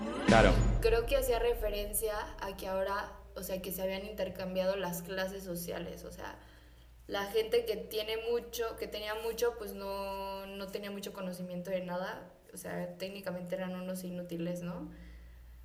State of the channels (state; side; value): identical; both; correlation 1.00